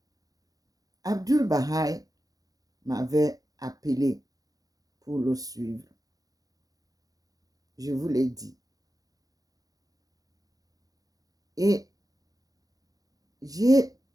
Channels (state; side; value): late; left; 0.18 ms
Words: Abdul Baha'i m'avait appelé pour le suivre. Je vous l'ai dit. Et j'ai